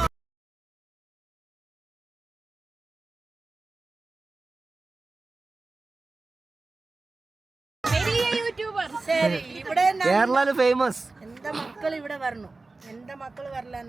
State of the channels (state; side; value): quieter; left; 3.5 dB